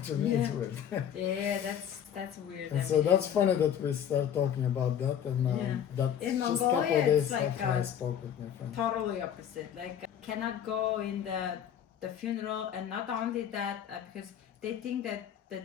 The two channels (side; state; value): right; quieter; 9.2 dB